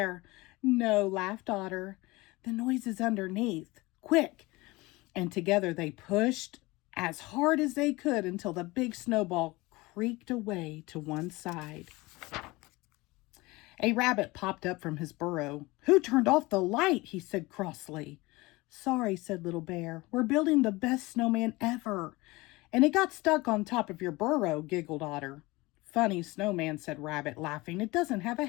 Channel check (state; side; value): quieter; right; 22.0 dB